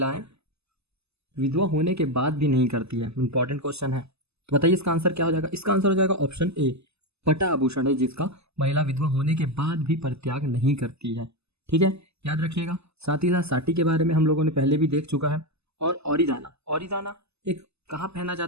विधवा होने के बाद भी नहीं करती है? इंपॉर्टेंट क्वेश्चन है, तो बताइए इसका आंसर क्या हो जाएगा? इसका आंसर हो जाएगा ऑप्शन ए, पटा आभूषण है जिसका महिला विधवा होने के बाद भी परित्याग नहीं करती है। ठीक है, याद रखिएगा। साथ ही साथ साटी के बारे में हम लोगों ने पहले भी देख चुका है। और औरीदाना, औरीदाना एक कहाँ पहना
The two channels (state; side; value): late; left; 0.79 ms